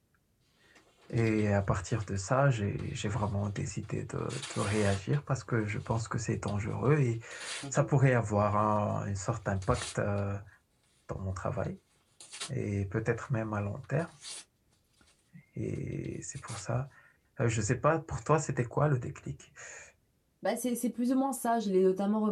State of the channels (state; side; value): identical; both; correlation 1.00